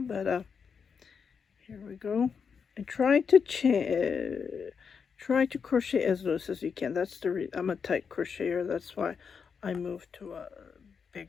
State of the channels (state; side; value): quieter; right; 6.2 dB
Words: but here we go. And try to crochet as loose as you can. That's the I'm a tight crocheter. That's why I moved to a